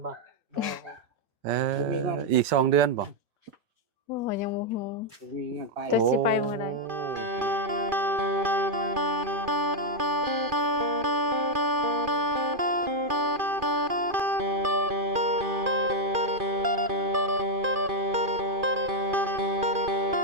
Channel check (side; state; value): left; late; 2.4 ms